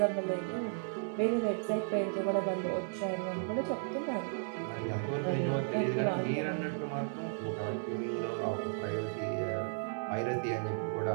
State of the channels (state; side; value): silent; left; 55 dB below the other